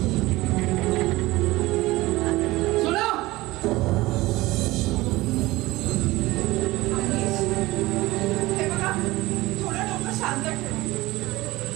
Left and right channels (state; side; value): quieter; left; 19.2 dB